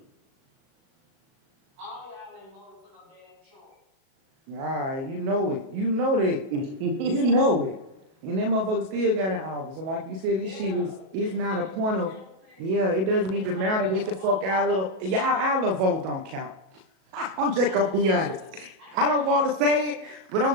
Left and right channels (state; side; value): late; left; 37 ms